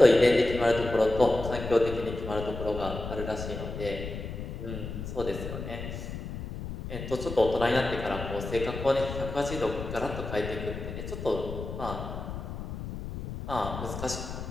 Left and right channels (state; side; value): noise; left; rumble, 7 dB below the sound